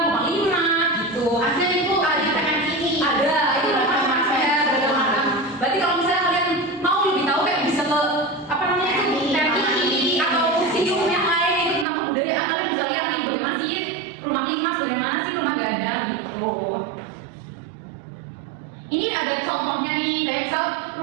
rumah limak, gitu. Ada itu ada ini. Ada itu rumah berarti kalau misalnya kalian mau lebih tahu kayak bisa ke TV atau museum yang lain itu tentang kebudayaan, kalian bisa lihat nih bagaimana sih rumah limas, bagaimana sih rumah gadang gitu. Ini ada contohnya nih, kayak misal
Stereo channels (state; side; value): drops out; left; at 11.9 s